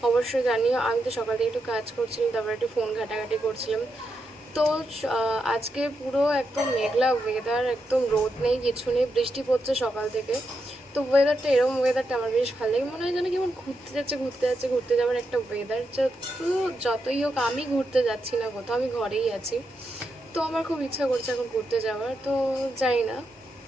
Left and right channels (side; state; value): both; normal; correlation 0.84